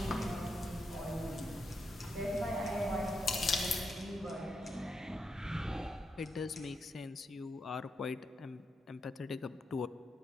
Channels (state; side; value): normal; both; correlation 0.83